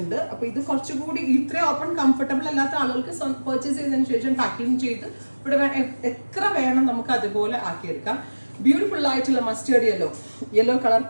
അപ്പൊ ഇത് കുറച്ചുകൂടി ഇത്രയും ഓപ്പൺ കംഫർട്ടബിൾ അല്ലാത്ത ആളുകൾക്ക് പർച്ചേസ് ചെയ്തതിനു ശേഷം പാക്കിംഗ് ചെയ്ത് ഇവിടെ എത്ര വേണം നമുക്ക് അതുപോലെ ആക്കിയെടുക്കാം. ബ്യൂട്ടിഫുൾ ആയിട്ടുള്ള mustard yellow colour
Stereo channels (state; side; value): inverted; both; correlation -1.00